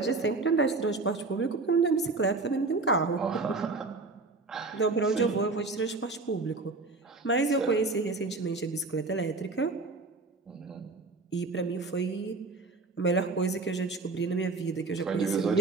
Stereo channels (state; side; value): quieter; left; 3.7 dB